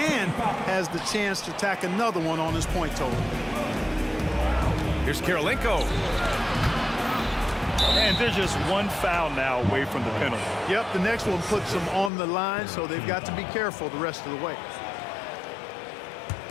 has the chance to tack another one on his point total. Here's Kirilenko. And they're just 1 foul now away from the penalty. Yep, the next one puts them on the line, so they've got to be careful the rest of the way.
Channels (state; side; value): drops out; right; at 12.1 s